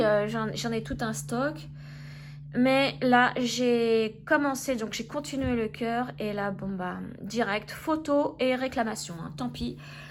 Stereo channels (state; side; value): identical; both; correlation 1.00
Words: j'en ai tout un stock. Mais là, j'ai commencé, donc j'ai continué le cœur, et là, bon bah, direct, photo et réclamation, hein, tant pis.